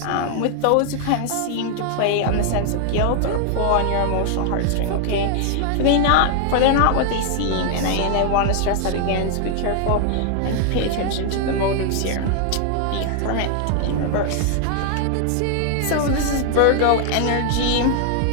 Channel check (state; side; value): different; both; correlation 0.00